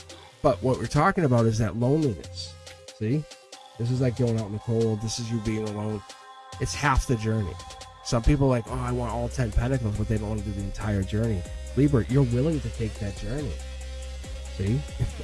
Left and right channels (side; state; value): both; identical; correlation 1.00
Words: But what we're talking about is that loneliness. See? This is like going out in the cold. This is you being alone. It's half the journey. Some people are like, oh, I want all 10 pentacles, but they don't want to do the entire journey. Libra, you're willing to take that journey. See?